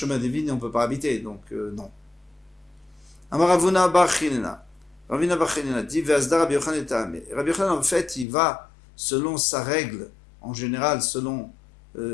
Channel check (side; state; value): right; drops out; at 8.2 s